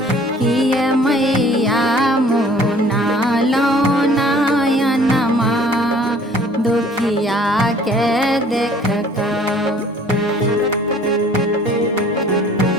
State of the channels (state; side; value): normal; both; correlation 0.53